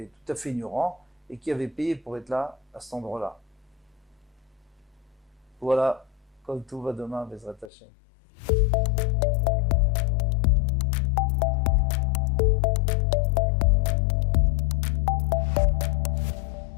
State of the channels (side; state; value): right; drops out; at 7.7 s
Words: tout à fait ignorants, et qui avaient payé pour être là, à cet endroit-là. Voilà, comme tout va demain, Bezrat Hashem.